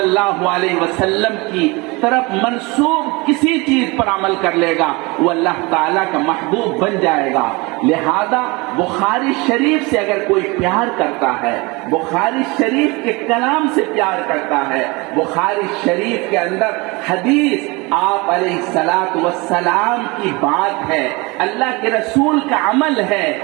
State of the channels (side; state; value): left; quieter; 25.5 dB